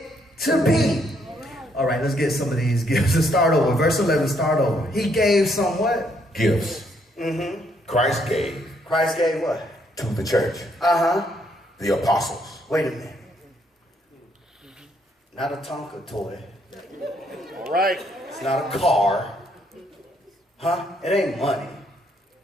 to be. All right, let's get some of these gifts. Let's start over. Verse 11, start over. He gave some what? Gifts. Christ gave. Christ gave what? To the church. The apostles. Wait a minute. Not a Tonka toy. all right. It's not a car. Huh? It ain't money.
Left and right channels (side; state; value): both; normal; correlation 0.71